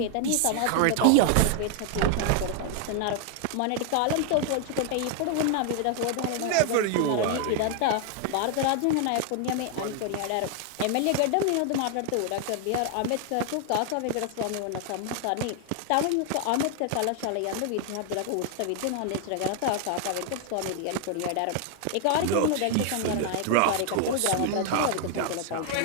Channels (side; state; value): both; different; correlation 0.00